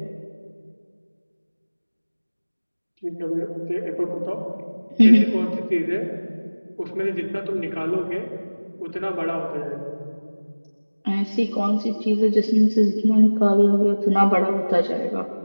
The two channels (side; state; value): both; inverted; correlation -1.00